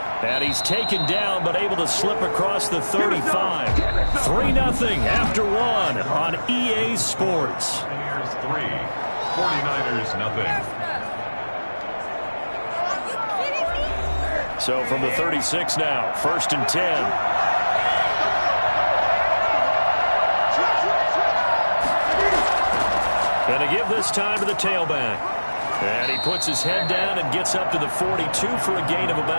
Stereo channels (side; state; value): both; inverted; correlation -1.00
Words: And he's taken down but able to slip across the 35. 3-0 after 1 on EA Sports. Here's 3. 49ers nothing. So from the 36 now, 1st and 10. And a give this time to the tailback. And he puts his head down and gets up to the 42 for a gain of